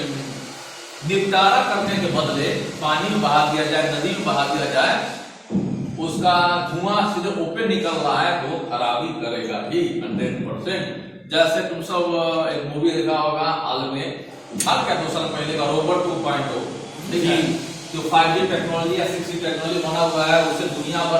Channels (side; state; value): both; identical; correlation 1.00